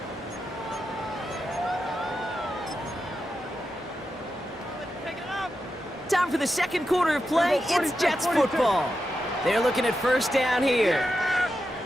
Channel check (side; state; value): both; normal; correlation 0.88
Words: Time for the 2nd quarter of play. It's Jets football. They're looking at 1st down here.